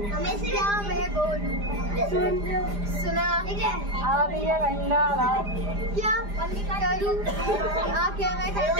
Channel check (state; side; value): late; left; 4.9 ms